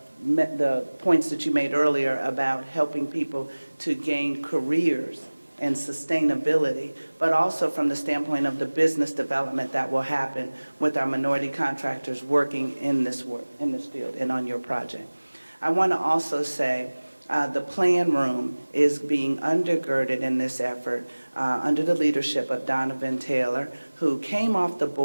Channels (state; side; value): inverted; both; correlation -1.00